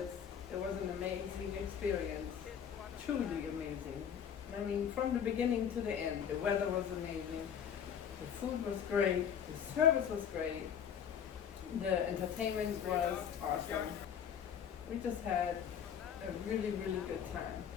was an amazing experience, truly amazing. I mean, from the beginning to the end, the weather was amazing, the food was great, the service was great, the entertainment was awesome. We just had a really, really good time.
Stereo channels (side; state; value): right; quieter; 8.2 dB